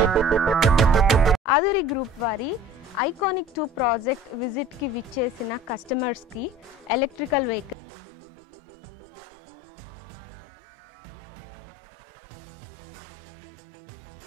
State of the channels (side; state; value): left; drops out; at 7.8 s